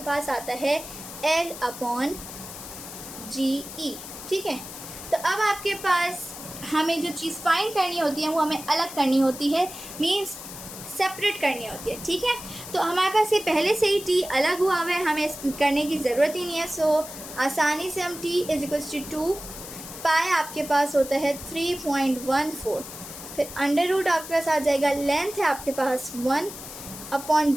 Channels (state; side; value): noise; left; hiss, 12 dB below the sound